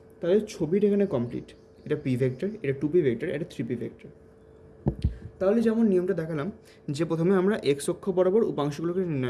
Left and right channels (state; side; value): identical; both; correlation 1.00